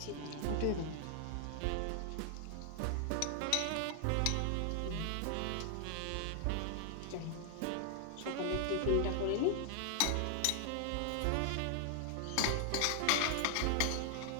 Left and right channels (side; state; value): both; different; correlation 0.00